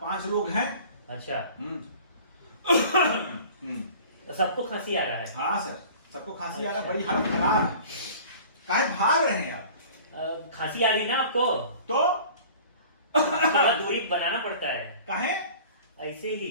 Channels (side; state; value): both; inverted; correlation -0.44